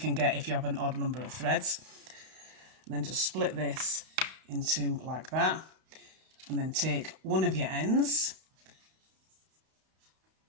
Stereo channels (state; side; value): late; left; 31 ms